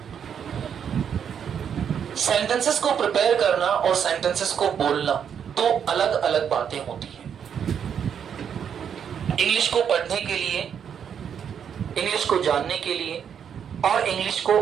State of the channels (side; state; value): left; quieter; 8.0 dB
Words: सेंटेंसेस को प्रिपेयर करना और सेंटेंसेस को बोलना 2 अलग अलग बातें होती हैं। इंग्लिश को पढ़ने के लिए, इंग्लिश को जानने के लिए और इंग्लिश को